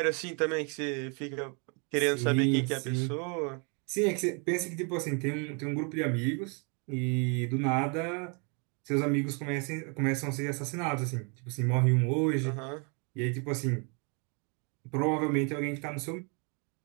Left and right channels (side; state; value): left; quieter; 35.9 dB